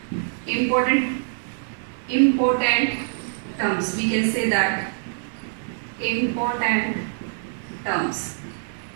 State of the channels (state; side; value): silent; left; digital silence